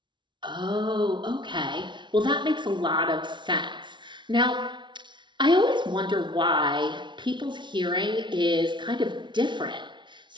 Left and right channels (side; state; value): left; late; 0.23 ms